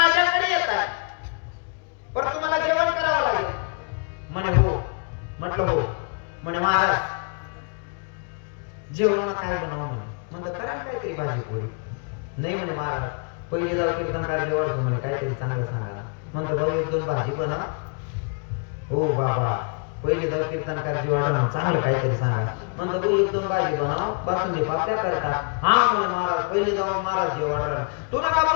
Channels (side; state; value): right; quieter; 39.4 dB